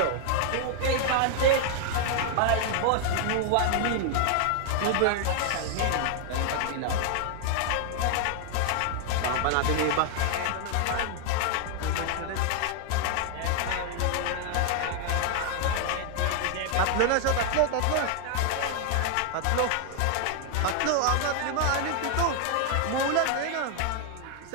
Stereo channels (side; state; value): both; different; correlation 0.00